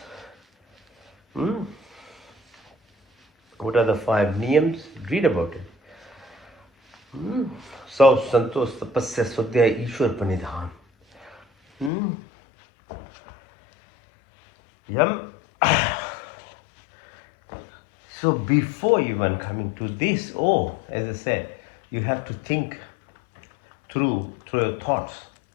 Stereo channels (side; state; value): right; drops out; at 11.9 s